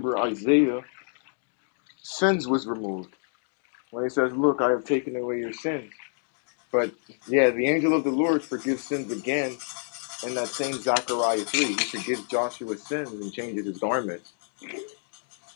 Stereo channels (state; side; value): silent; right; 60 dB below the other